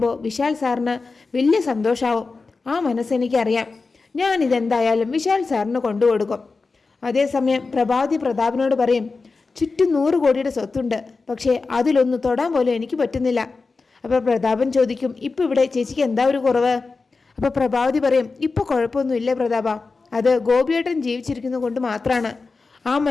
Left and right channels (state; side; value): quieter; right; 4.1 dB